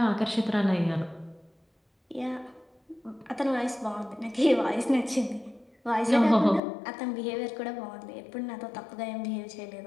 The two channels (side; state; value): right; drops out; at 6.6 s